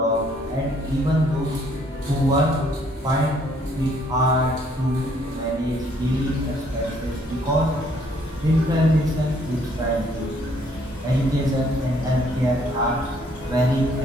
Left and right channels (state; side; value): normal; both; correlation 0.65